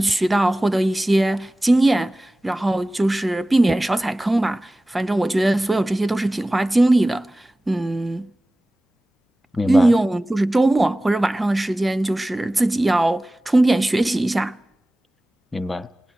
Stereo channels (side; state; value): both; normal; correlation 0.97